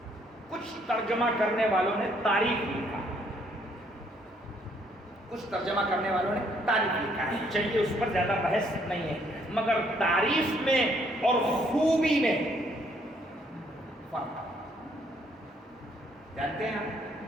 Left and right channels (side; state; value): both; normal; correlation 0.67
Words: کچھ ترجمہ کرنے والوں نے تعریف لکھا، کچھ ترجمہ کرنے والوں نے تعریف لکھا ہے. چلیے اس پر زیادہ بحث نہیں ہے، مگر تعریف میں اور خوبی میں فرق جانتے ہیں آپ؟